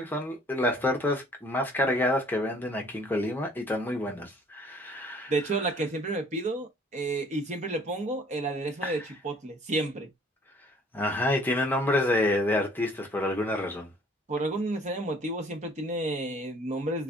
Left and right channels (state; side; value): normal; both; correlation 0.56